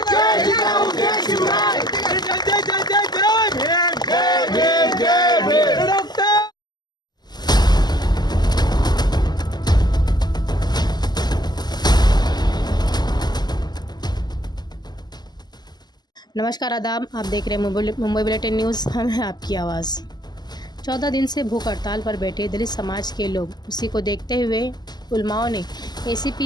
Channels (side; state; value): right; late; 0.20 ms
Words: नमस्कार आदाब, आप देख रहे हैं मुंबई बुलेटिन न्यूज़। हम हैं आपकी आवाज़। 14 दिन से भूख हड़ताल पर बैठे दलित समाज के लोग, उसी को देखते हुए उलमाओं ने